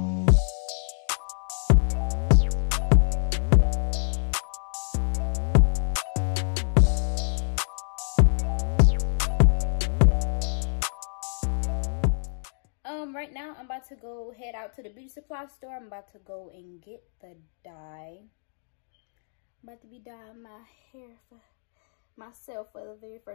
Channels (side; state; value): right; silent; digital silence